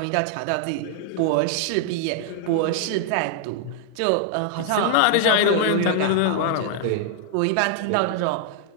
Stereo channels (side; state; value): both; different; correlation 0.00